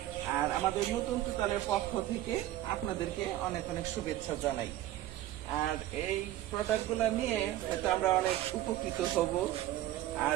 আর আমাদের নতুন তুতালের পক্ষ থেকে আপনাদেরকে অনেক অনেক শুভেচ্ছা জানাই। আর এই প্রোডাক্ট গুলো নিয়ে হয়তো আমরা অনেক উপকৃত হব।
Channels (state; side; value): quieter; left; 14.1 dB